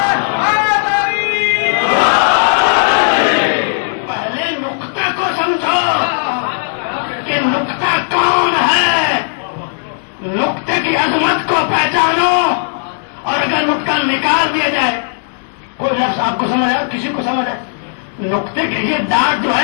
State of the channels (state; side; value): silent; right; digital silence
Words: پہلے نقطہ کو سمجھو کہ نقطہ کون ہے, نقطے کی عظمت کو پہچانو. اور اگر نقطہ نکال دیا جائے, کوئی لفظ آپ کو سمجھ آئے, کسی کو سمجھ آئے, نقطے کے لیے ڈاٹ جو